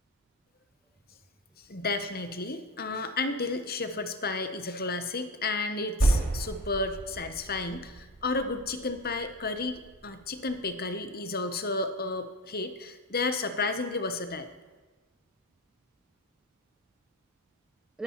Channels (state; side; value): normal; both; correlation 0.25